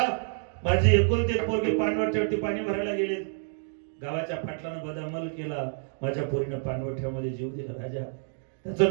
माझी एकुलती पोरगी पाणवठ्यावरती पाणी भरायला गेली गावाच्या पाटलानं बदामल केला माझ्या पोरीनं पाणवठ्यामध्ये जीव दिला राजा त्याचं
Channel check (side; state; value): left; silent; digital silence